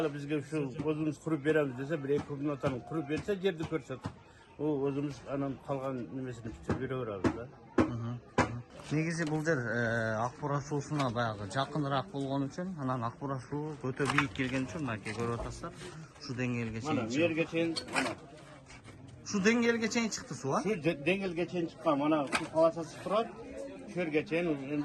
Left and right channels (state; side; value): identical; both; correlation 1.00